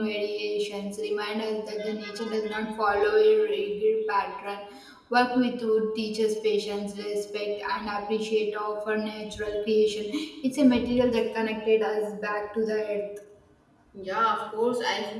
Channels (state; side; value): identical; both; correlation 1.00